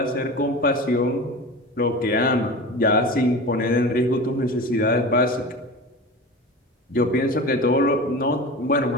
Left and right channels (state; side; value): normal; both; correlation 0.31